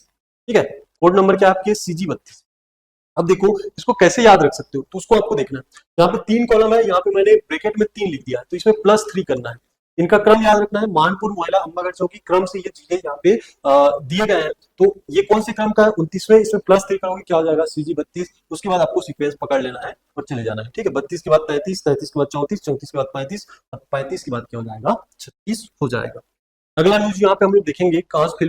ठीक है, कोड नंबर क्या है आपके CG32। अब देखो इसको कैसे याद रख सकते हो, तो उसको आपको देखना है। यहाँ पे 3 कॉलम है, यहाँ पे मैंने ब्रैकेट में 3 लिख दिया है, तो इसमें +3 करना है। इनका क्रम याद रखना है, मानपुर, मोयला, अंबागढ़, चौकी क्रम से ये चीजें यहाँ पे दिए गए हैं। तो ये कौन से क्रम का है, 29वें, इसमें +3 करोगे क्या हो जाएगा, CG32। उसके बाद आपको सीक्वेंस पकड़ लेना है और चले जाना है। ठीक है, 32 के बाद 33, 33 के बाद 34, 34 के बाद 35 और 35 के बाद क्या हो जाएगा, 36 हो जाएगा। अगला न्यूज यहाँ पे हम लोग देखेंगे, कांस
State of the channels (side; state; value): both; identical; correlation 1.00